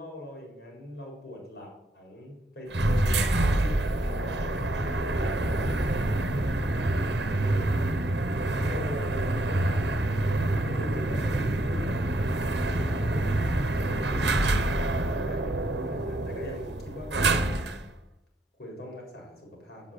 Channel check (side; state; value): both; normal; correlation 0.74